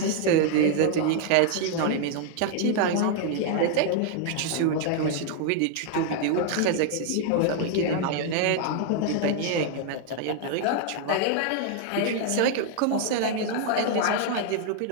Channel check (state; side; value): different; both; correlation 0.00